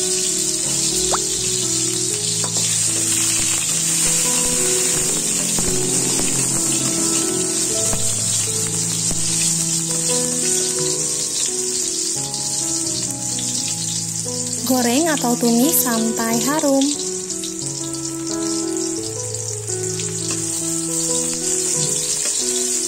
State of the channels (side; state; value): both; identical; correlation 1.00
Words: Goreng atau tumis sampai harum.